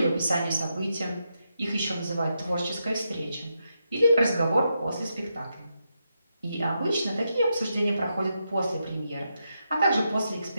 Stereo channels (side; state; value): both; inverted; correlation -0.84